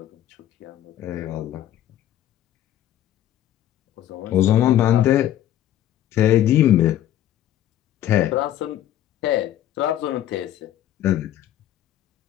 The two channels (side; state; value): right; quieter; 12.2 dB